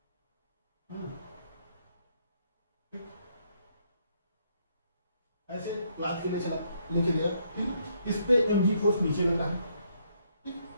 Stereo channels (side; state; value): both; inverted; correlation -0.72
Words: ऐसे लाद के ले चला, लेके गया, ठीक, इस पे mg फोर्स नीचे लगा है, ठीक,